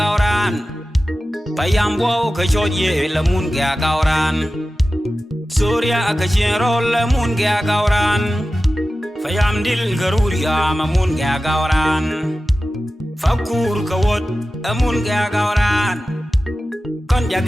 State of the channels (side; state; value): both; normal; correlation 0.94